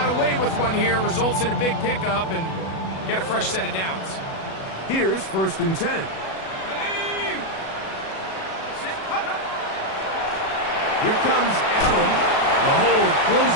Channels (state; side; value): late; right; 37 ms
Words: away with one here, results in a big pickup, and get a fresh set of downs. Here's 1st and 10. Here comes Allen. The hole